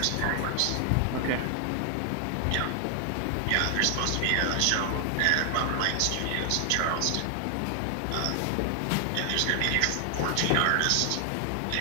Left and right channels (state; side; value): different; both; correlation 0.00